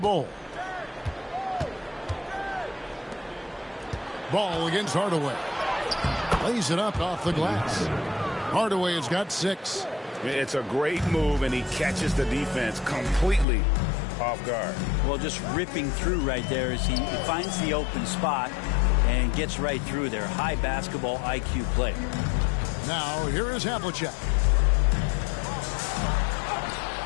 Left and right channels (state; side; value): drops out; right; at 13.5 s